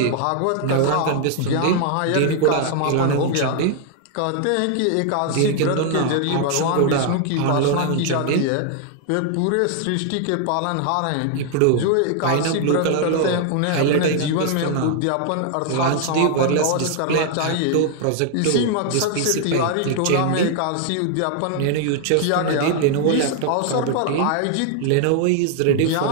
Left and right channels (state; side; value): different; both; correlation 0.00